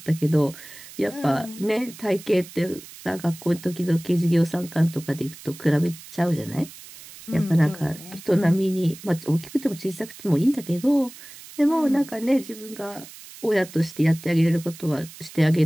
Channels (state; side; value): noise; right; hiss, 17 dB below the sound